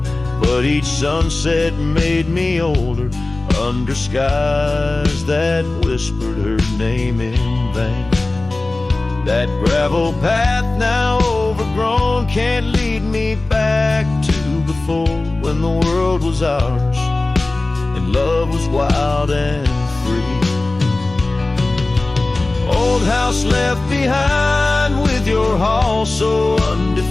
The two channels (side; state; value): right; quieter; 3.1 dB